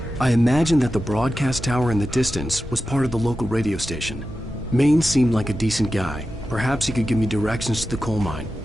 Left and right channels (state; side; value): normal; both; correlation 0.92